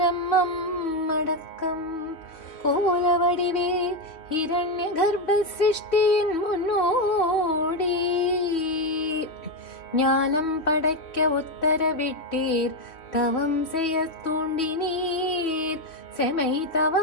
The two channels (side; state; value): right; late; 3.3 ms